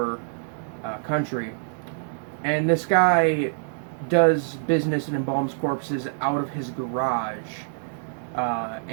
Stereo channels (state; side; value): silent; left; 61 dB below the other